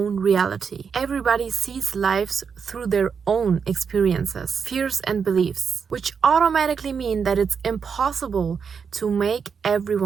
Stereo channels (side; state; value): left; quieter; 6.3 dB